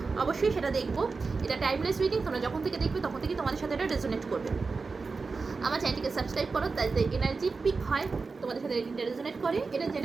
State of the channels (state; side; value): quieter; left; 4.4 dB